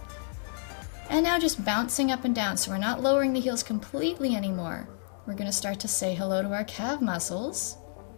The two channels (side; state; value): right; silent; digital silence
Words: And now just bouncing up and down, so we're not lowering the heels completely anymore. We're going to start to say hello to our calf muscles.